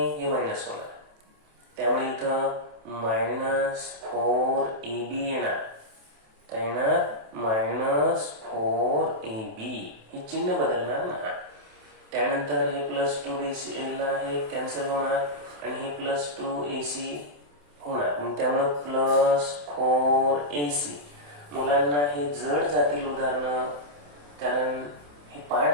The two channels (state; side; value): late; left; 27 ms